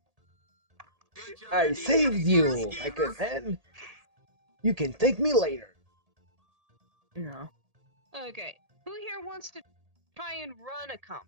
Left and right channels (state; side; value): late; left; 1.8 ms